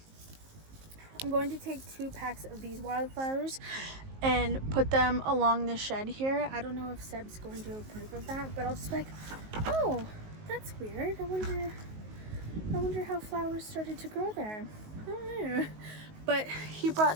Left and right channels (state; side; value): late; left; 19 ms